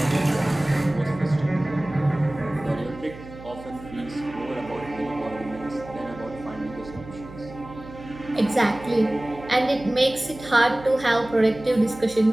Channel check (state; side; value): noise; right; hum, 16 dB below the sound